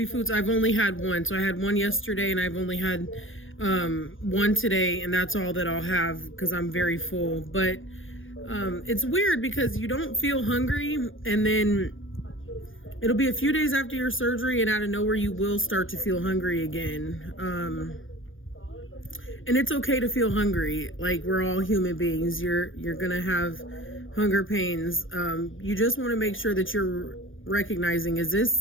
foods, I've only had one. So I had one yesterday, and I've only had one today, and that's all that I'll have because I'm very full. But it's weird because you don't feel hungry, and then it'll be a few days after your surgery, and out of nowhere you will start to feel hungry again. And it's okay to feel hungry. Like, we're all human beings. You're gonna have hunger pains. You just want to make sure that you're recognizing, is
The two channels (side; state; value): right; late; 0.58 ms